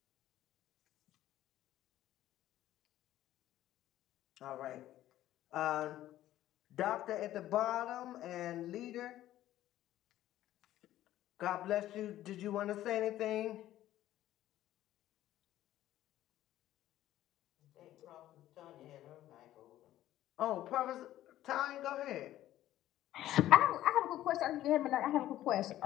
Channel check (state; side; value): quieter; right; 13.6 dB